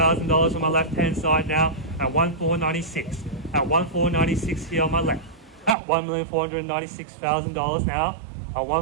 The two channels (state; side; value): drops out; left; at 5.8 s